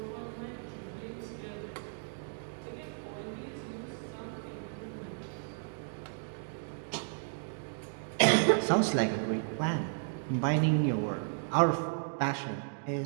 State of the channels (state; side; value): silent; left; digital silence